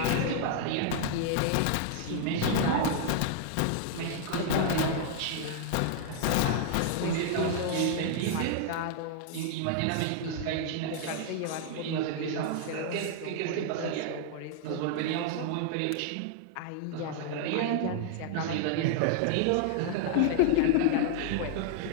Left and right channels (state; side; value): different; both; correlation -0.01